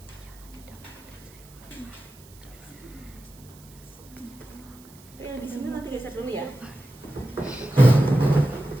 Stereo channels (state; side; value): noise; right; hiss, 24 dB below the sound